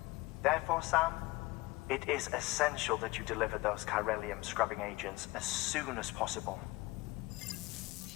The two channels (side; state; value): right; quieter; 21.4 dB